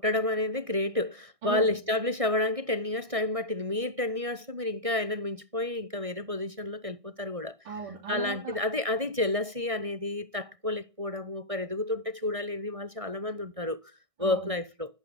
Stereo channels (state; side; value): late; left; 1.6 ms